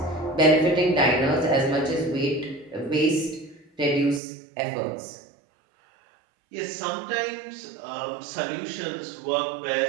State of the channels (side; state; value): left; drops out; at 4.2 s